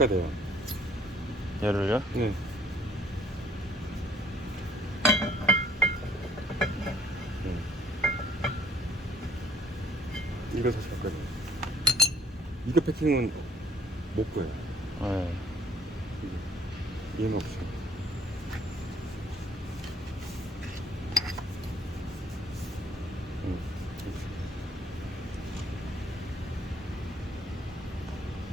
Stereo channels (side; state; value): both; normal; correlation 0.62